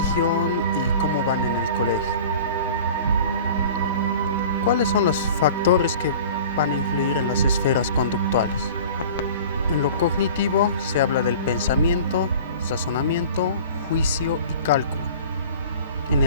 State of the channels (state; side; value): inverted; both; correlation -0.42